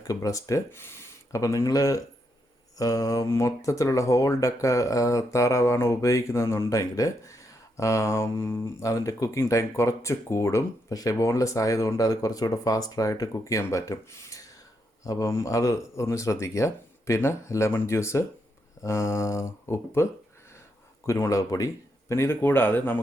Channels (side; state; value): both; normal; correlation 0.80